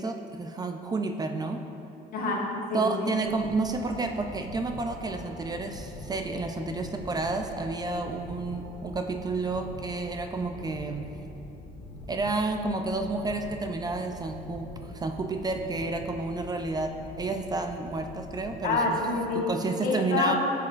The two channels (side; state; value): both; normal; correlation 0.46